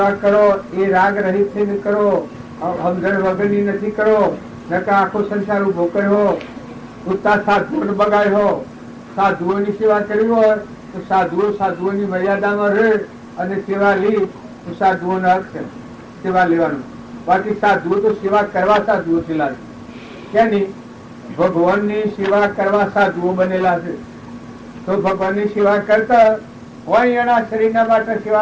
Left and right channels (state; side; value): identical; both; correlation 1.00